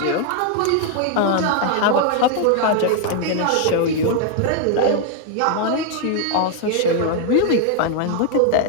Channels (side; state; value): both; different; correlation 0.00